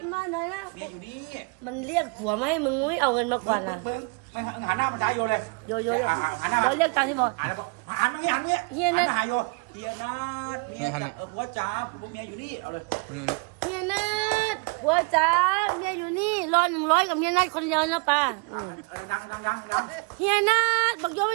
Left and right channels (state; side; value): quieter; left; 32.3 dB